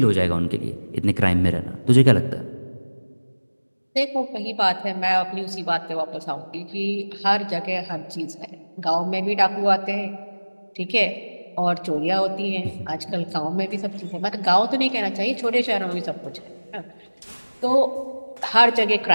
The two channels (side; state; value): both; inverted; correlation -1.00